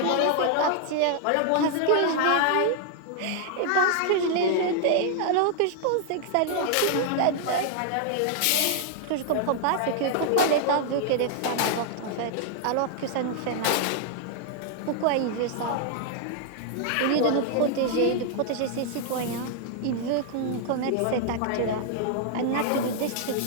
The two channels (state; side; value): different; both; correlation 0.00